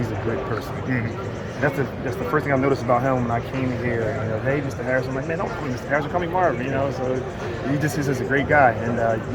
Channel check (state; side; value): identical; both; correlation 1.00